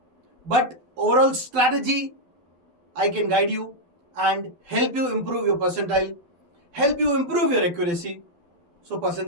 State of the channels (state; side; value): late; left; 12 ms